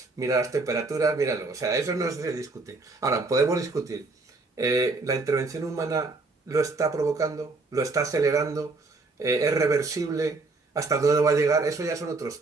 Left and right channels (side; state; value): left; quieter; 3.5 dB